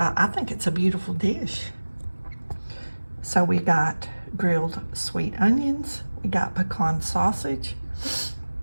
think it's a beautiful dish. So we got grilled sweet onions, we got pecan sausage,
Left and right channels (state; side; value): inverted; both; correlation -1.00